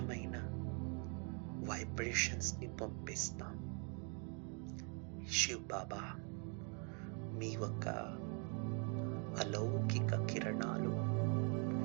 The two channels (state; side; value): quieter; left; 37.2 dB